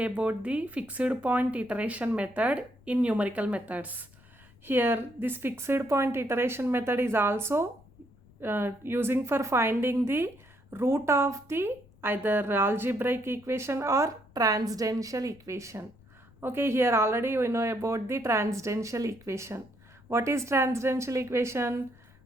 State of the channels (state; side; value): noise; left; rumble, 26 dB below the sound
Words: about the fixed point iteration method in numerical methods. Here this fixed point iteration method is also using for finding the root of the either algebraic equation or transcendental equation. Okay, here already we know about the transcendental equation. What is transcendental equation?